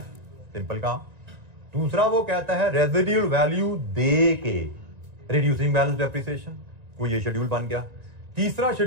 simple काम। दूसरा वो कहता है रेजिडुअल वैल्यू दे के रिड्यूसिंग बैलेंस डेप्रिसिएशन, कोई ये शेड्यूल बन गया। तीसरा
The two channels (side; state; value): left; late; 1.9 ms